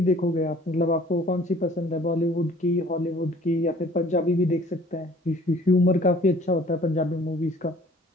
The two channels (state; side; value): normal; both; correlation 0.53